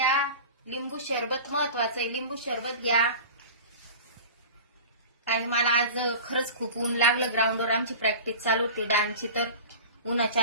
लिंबू सरबत महत्वाचं आहे, लिंबू सरबत घ्या. आणि मला आज खरंच खूप ऊन लागलं. ग्राउंडवर आमची प्रॅक्टिस चालू होती डान्सची, तर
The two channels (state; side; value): inverted; both; correlation -0.36